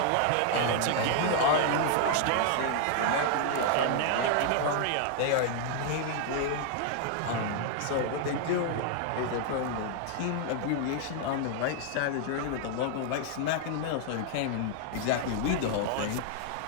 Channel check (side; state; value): both; different; correlation 0.00